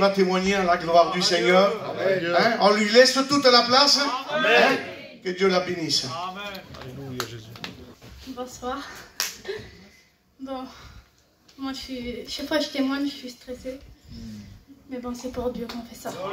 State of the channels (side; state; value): both; identical; correlation 1.00